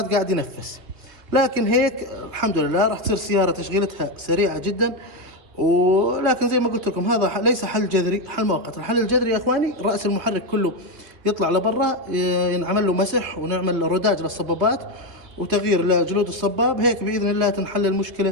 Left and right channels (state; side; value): late; left; 2.8 ms